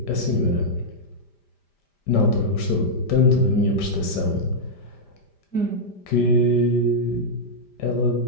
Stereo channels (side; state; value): right; late; 5.0 ms